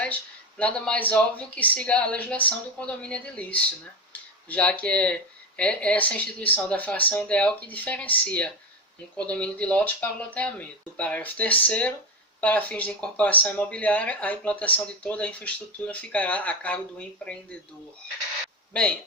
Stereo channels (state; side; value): normal; both; correlation 0.17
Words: nada mais óbvio que siga a legislação do condomínio edilício, né? já que é essa instituição da fração ideal que diferencia um condomínio de lotes para o loteamento. No parágrafo 3º, para fins de incorporação imobiliária, a implantação de toda a infraestrutura ficará a cargo do empreendedor. Bem,